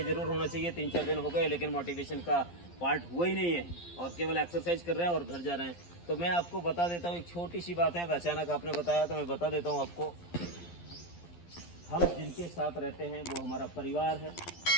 ज़रूर होना चाहिए। 3-4 दिन हो गए लेकिन मोटिवेशन का पार्ट हुआ ही नहीं है और केवल एक्सरसाइज कर रहे हैं और घर जा रहे हैं। तो मैं आपको बता देता हूँ, एक छोटी सी बात है। अचानक आपने बताया तो मैं बता देता हूँ आपको। हम जिनके साथ रहते हैं वो हमारा परिवार है।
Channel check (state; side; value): late; right; 12 ms